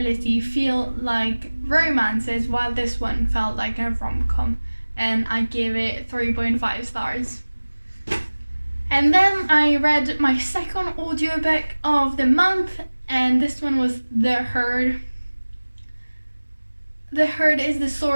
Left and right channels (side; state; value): both; inverted; correlation -1.00